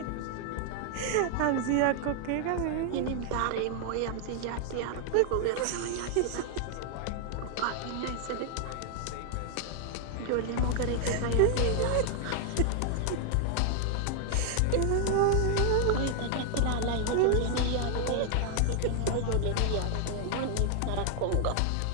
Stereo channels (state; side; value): different; both; correlation 0.00